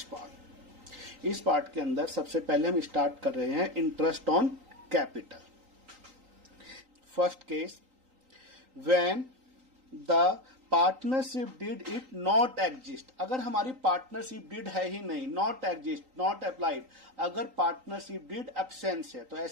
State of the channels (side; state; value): left; late; 3.8 ms